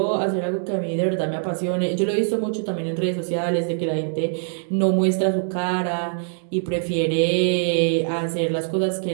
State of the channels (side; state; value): left; silent; digital silence